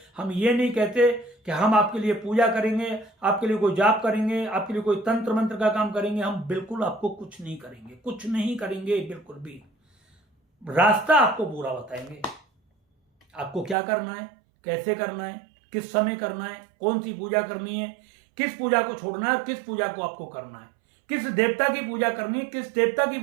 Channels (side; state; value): left; drops out; at 13.8 s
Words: हम ये नहीं कहते कि हम आपके लिए पूजा करेंगे, आपके लिए कोई जाप करेंगे, आपके लिए कोई तंत्र मंत्र का काम करेंगे। हम बिल्कुल आपको कुछ नहीं करेंगे, कुछ नहीं करेंगे, बिल्कुल भी। रास्ता आपको पूरा बताएंगे, आपको क्या करना है, कैसे करना है, किस समय करना है, कौन सी पूजा करनी है, किस पूजा को छोड़ना है, किस पूजा को आपको करना है, किस देवता की पूजा करनी है, किस देवता की